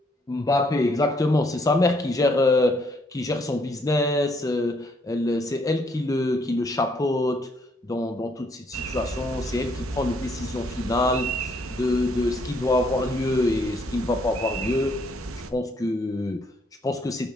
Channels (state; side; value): normal; both; correlation 0.69